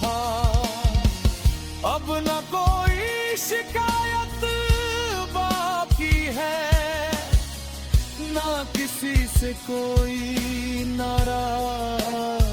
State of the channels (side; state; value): both; identical; correlation 1.00